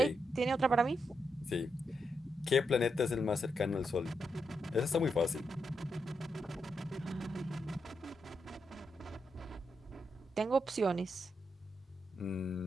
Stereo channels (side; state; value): both; normal; correlation 0.83